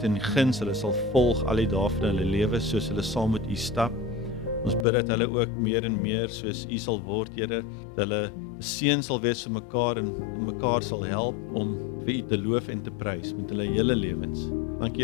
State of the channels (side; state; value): right; drops out; at 4.9 s